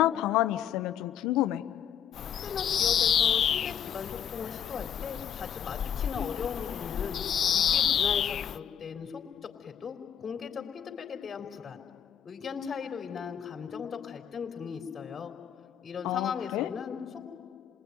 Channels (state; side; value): quieter; right; 9.1 dB